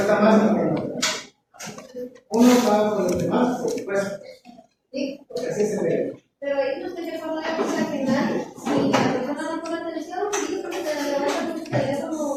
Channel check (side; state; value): both; identical; correlation 1.00